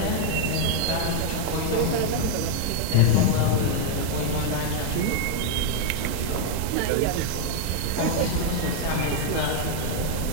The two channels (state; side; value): different; both; correlation 0.00